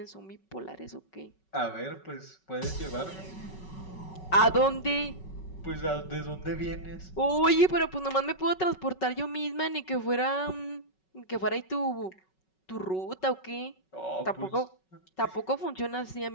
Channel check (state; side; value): late; right; 5.3 ms